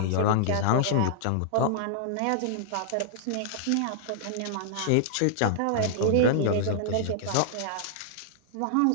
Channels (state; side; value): different; both; correlation -0.01